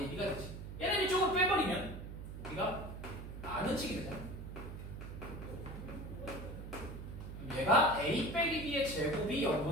되지. 얘는 이쪽으로 빼버리면 우리가 나누치게 되잖아. 얘가 A 빼기 B의 제곱이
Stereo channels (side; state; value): right; noise; hum, 9 dB below the sound